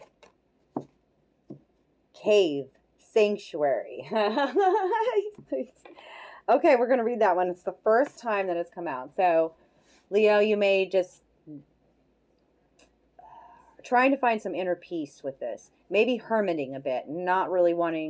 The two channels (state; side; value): identical; both; correlation 1.00